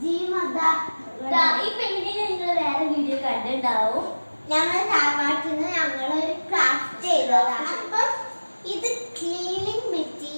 ഈ പെയിന്റിങ് നിങ്ങൾ വേറെ വീഡിയോ കണ്ടിട്ടുണ്ടാവും. ഞങ്ങൾ താവാട്ടിന്ന് ഞങ്ങളൊരു ക്രാഫ്റ്റ് ചെയ്തതാണ്. അപ്പം ഇത് ക്ലീനിങ്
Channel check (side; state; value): both; inverted; correlation -1.00